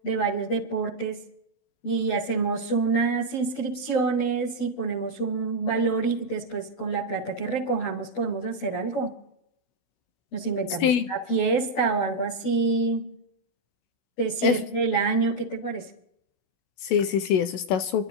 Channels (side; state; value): right; late; 16 ms